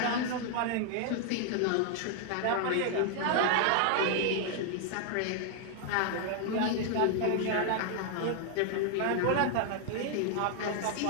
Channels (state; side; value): different; both; correlation 0.00